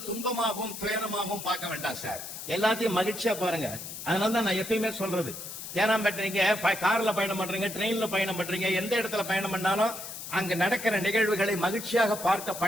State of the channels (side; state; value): left; noise; hiss, 9 dB below the sound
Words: துன்பமாகவும் துயரமாகவும் பார்க்க வேண்டாம் சார், எல்லாத்தையும் மகிழ்ச்சியா பாருங்க. அதனாலதான் நான் எப்பயுமே சொல்றது, ஏன்னா பண்றீங்க கார்ல பயணம் பண்றீங்க, ட்ரெயின்ல பயணம் பண்றீங்க, எந்த இடத்துல பயணம் பண்ணாலும் அங்க நடக்கிற நிகழ்வுகளை மகிழ்ச்சியாக பார்க்க